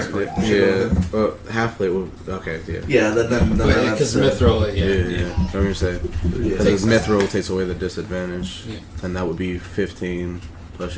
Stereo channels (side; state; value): both; identical; correlation 1.00